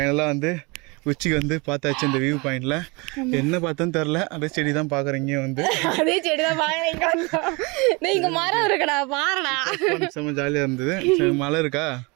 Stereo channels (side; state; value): left; quieter; 27.9 dB